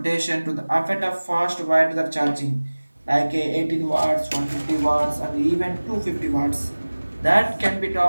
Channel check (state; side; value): inverted; both; correlation -1.00